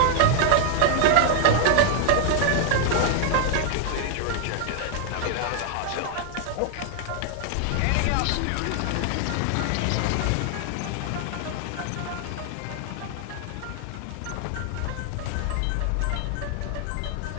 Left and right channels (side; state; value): both; different; correlation 0.00